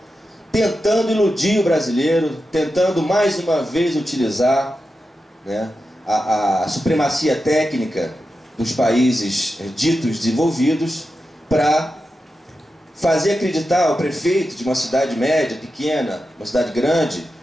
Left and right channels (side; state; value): both; normal; correlation 0.90